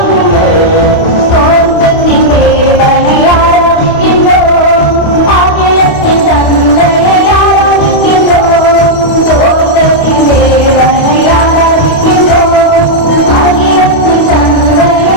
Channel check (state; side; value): late; right; 28 ms